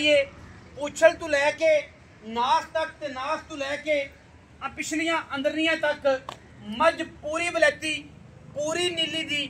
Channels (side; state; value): both; identical; correlation 1.00